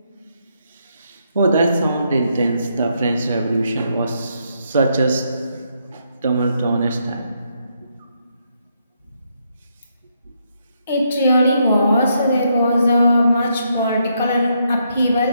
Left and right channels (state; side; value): inverted; both; correlation -0.77